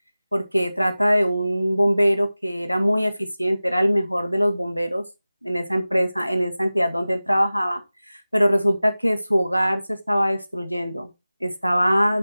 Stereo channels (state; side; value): inverted; both; correlation -0.97